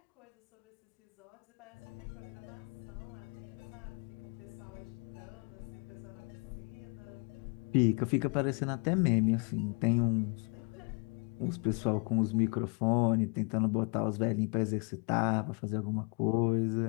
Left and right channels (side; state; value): right; quieter; 34.8 dB